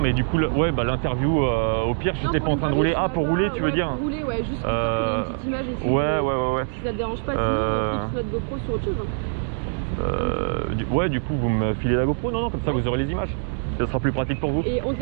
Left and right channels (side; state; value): left; silent; digital silence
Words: du coup, l'interview, au pire, je n'étais pas en train de rouler. Ah, pour rouler, tu veux dire? Pour rouler, ouais, juste pour qu'il y ait une petite image aussi. Ouais. Si ça te dérange pas, sinon on clipse notre GoPro sur autre chose. Ouais, du coup, vous me filez la GoPro? Non, comme ça, vous aurez les images. Ça sera plus pratique pour vous. Et on te